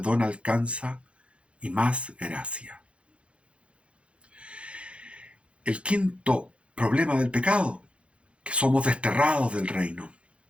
alcanza y más gracia. El quinto problema del pecado, que somos desterrados del reino.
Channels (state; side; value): late; left; 0.060 ms